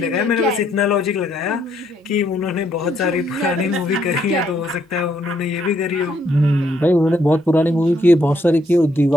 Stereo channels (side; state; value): both; normal; correlation 0.72